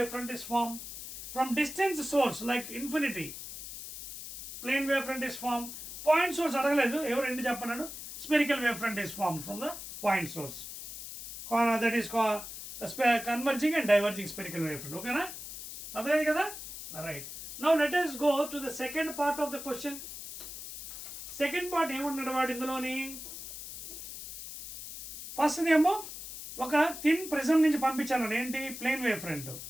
front is formed. From distant source like infinity, plane wave front is formed. Point source అడగలేదు, ఎవరు ఎందు చెప్పన్నాడు, spherical wave front is formed from the point source. That is called converging and diverging spherical wave front. Okay na? అర్థమైంది కదా? Alright. Now let us go to the second part of the question. Second part ఏమన్నాడు వాడు ఇందులోని, ఫస్ట్ ఏమో ఒక thin prism నుంచి పంపించాను, ఏంటి, ప్లేన్ వేవ్ ఫ్రంట్.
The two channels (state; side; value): noise; left; hiss, 10 dB below the sound